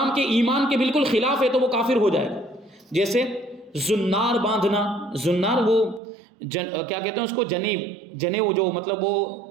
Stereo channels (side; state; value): left; drops out; at 6.0 s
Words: کے ایمان کے بالکل خلاف ہے، تو وہ کافر ہو جائے گا۔ جیسے زنار باندھنا، زنار وہ کیا کہتے ہیں اس کو، جنیو جو مطلب وہ